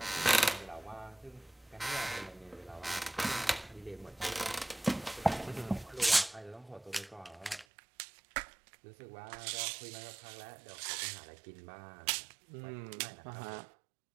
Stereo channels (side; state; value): left; drops out; at 7.7 s